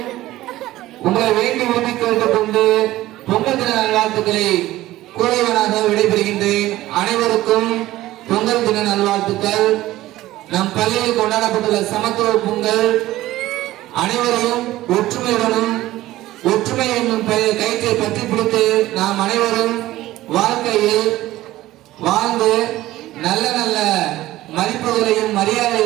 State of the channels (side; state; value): left; quieter; 16.0 dB